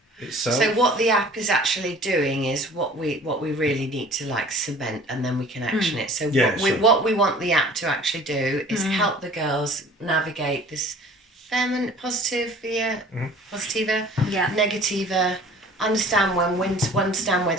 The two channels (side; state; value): both; normal; correlation 0.48